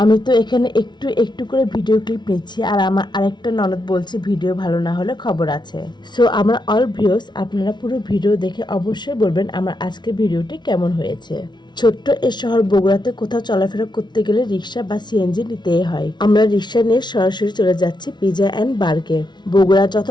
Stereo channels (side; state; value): right; late; 0.21 ms